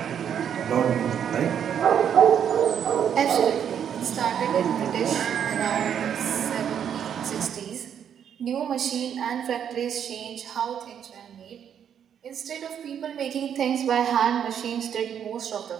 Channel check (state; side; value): quieter; left; 8.7 dB